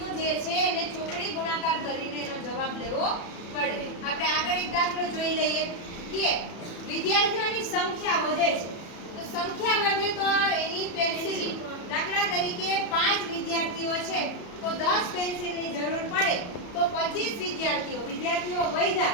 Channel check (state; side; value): late; right; 33 ms